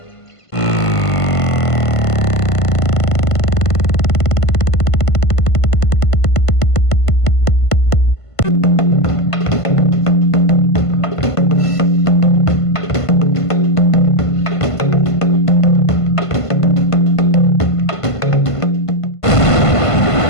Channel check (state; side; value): late; right; 1.5 ms